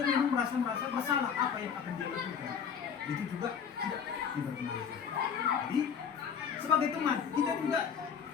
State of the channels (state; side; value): quieter; right; 7.1 dB